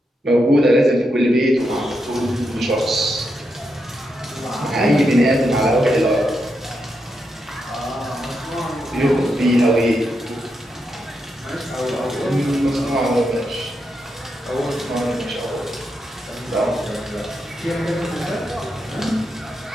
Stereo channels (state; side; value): normal; both; correlation 0.84